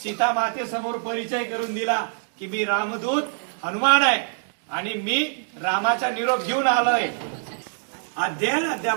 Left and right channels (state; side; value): silent; left; 62 dB below the other